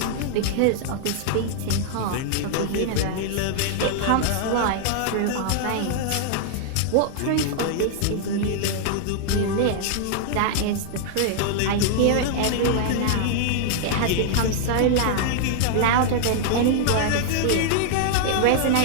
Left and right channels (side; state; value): both; different; correlation 0.00